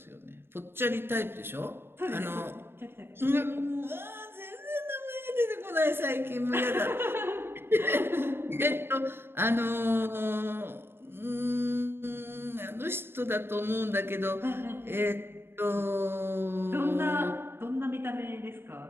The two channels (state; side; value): late; left; 0.11 ms